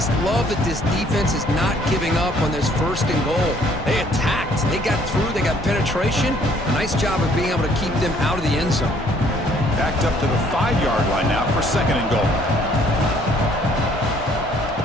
love that this defense is not giving up on this first and goal. They attacked. They got through. They got penetration. A nice job of being able to keep them out of the end zone. Backed up to the 5-yard line now for second and goal.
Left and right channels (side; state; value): both; normal; correlation 0.62